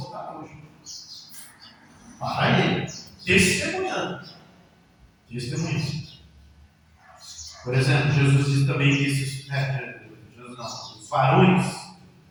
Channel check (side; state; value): both; identical; correlation 1.00